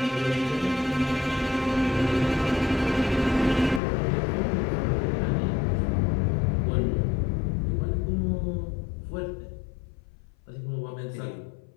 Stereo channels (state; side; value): drops out; right; at 3.8 s